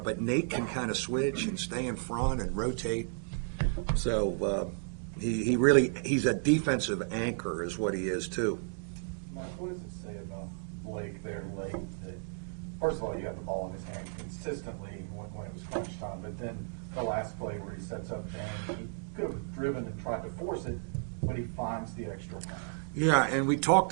Nate can kind of switch and stay in front and rotate. So he's a defensive anchor is what he is too. Mike, what does it say about Blake there late? That first of all, you have the ball in his hand consistently when it was crunch time, but then the last play where he sets up and he could have driven and tried to force it, but he finds the extra man. Yeah, and we talked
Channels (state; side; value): silent; left; digital silence